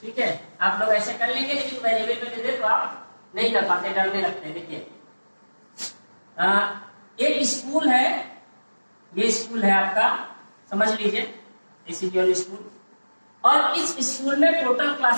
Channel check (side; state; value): both; inverted; correlation -1.00